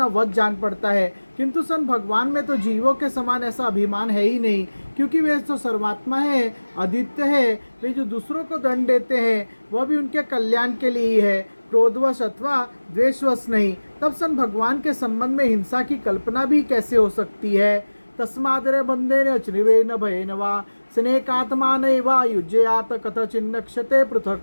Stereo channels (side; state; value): both; inverted; correlation -1.00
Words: वध जान पड़ता है, किंतु सन भगवान में तो जीवों के समान ऐसा अभिमान है ही नहीं, क्योंकि वे तो सर्वात्मा है, अद्वितीय है। वे जो दूसरों को दंड देते हैं वह भी उनके कल्याण के लिए ही है, क्रोधवश अथवा द्वेषवश नहीं। तब सन भगवान के संबंध में हिंसा की कल्पना भी कैसे हो सकती है। तस्मादरे बंधेन चनिवेन भयेन वा स्नेकात्मानैवा युज्ययात कथचिन्नक्षते